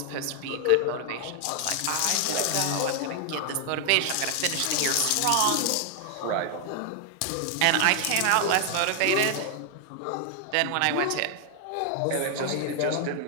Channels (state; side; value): different; both; correlation 0.00